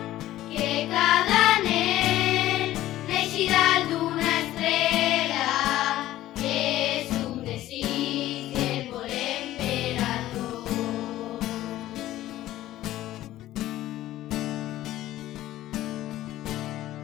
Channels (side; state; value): right; quieter; 14.6 dB